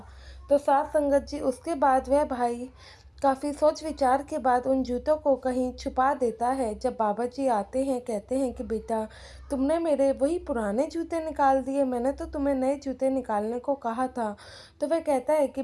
तो साथ संगत जी, उसके बाद वह भाई काफ़ी सोच विचार के बाद उन जूतों को कहीं छुपा देता है। जब बाबा जी आते हैं, कहते हैं कि बेटा, तुमने मेरे वही पुराने जूते निकाल दिए, मैंने तो तुम्हें नए जूते निकालने को कहा था। तो वह कहता है कि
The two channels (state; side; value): identical; both; correlation 1.00